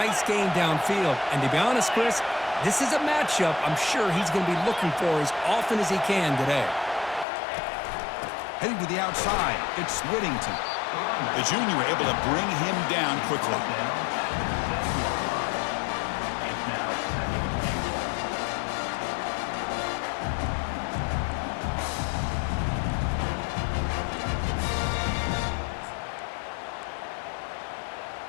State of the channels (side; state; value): right; drops out; at 7.2 s